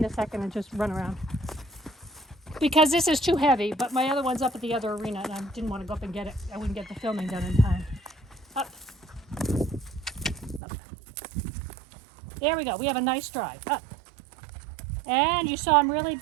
a second and just run around. Because this is too heavy, but my other one's up at the other arena and I didn't want to go up and get it. I wouldn't get the filming done in time. Up. Up. There we go. We have a nice stride. Up. And you saw him really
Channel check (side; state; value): left; drops out; at 10.6 s